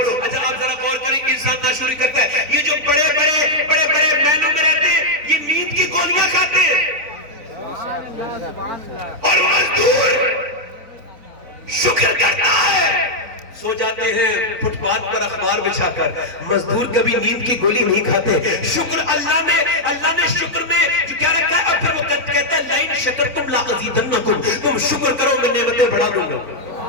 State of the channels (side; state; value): left; late; 3.9 ms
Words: اچھا آپ ذرا غور کریں، انسان ناشکری کرتا ہے، یہ جو بڑے محلوں میں رہتے ہیں یہ نیند کی گولیاں کھاتے ہیں، اور مزدور شکر کرتا ہے، سو جاتے ہیں فٹ پاتھ پر اخبار بچھا کر، مزدور کبھی نیند کی گولی نہیں کھاتے۔ شکر اللہ نے شکر میں جو کیا رکھا ہے، اور پھر وہ کہتا ہے لئن شکرتم لازیدنکم، تم شکر کرو میں نعمتیں بڑھا دوں گا۔